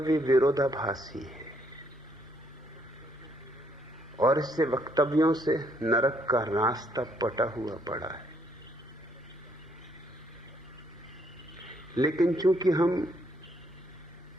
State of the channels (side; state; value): both; normal; correlation 0.70